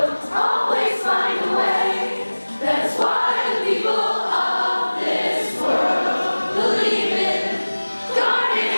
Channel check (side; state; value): both; inverted; correlation -1.00